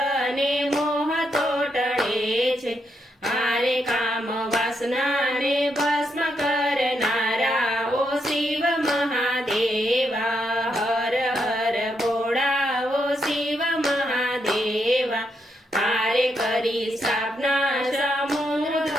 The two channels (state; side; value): normal; both; correlation 0.80